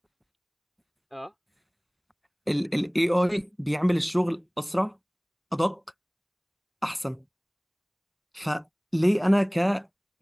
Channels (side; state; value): both; identical; correlation 1.00